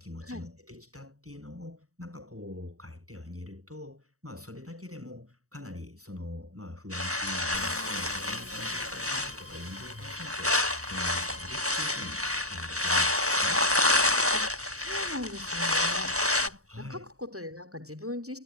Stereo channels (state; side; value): late; left; 0.65 ms